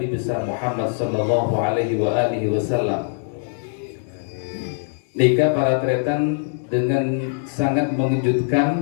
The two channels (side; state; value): right; silent; digital silence